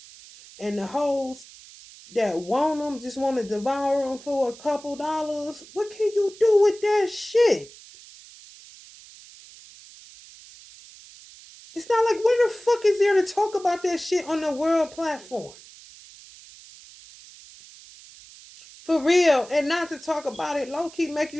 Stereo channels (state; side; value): noise; right; hiss, 20 dB below the sound